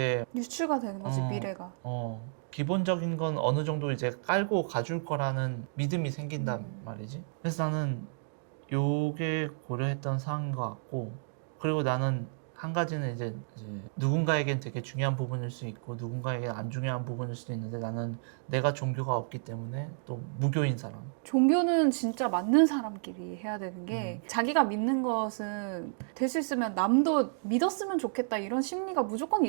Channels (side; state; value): left; silent; digital silence